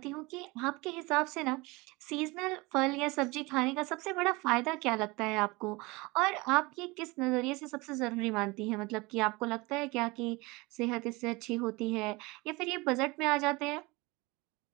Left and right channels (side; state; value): left; quieter; 24.0 dB